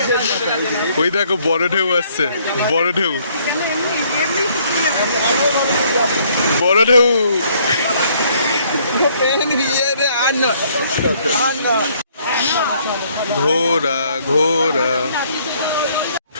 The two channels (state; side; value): inverted; both; correlation -0.64